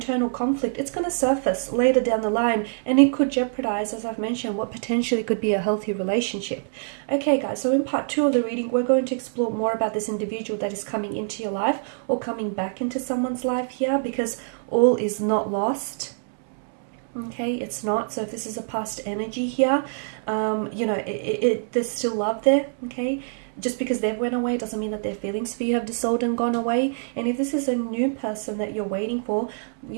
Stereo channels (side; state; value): left; silent; 62 dB below the other